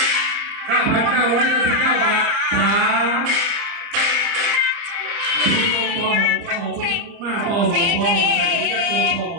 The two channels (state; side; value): late; left; 30 ms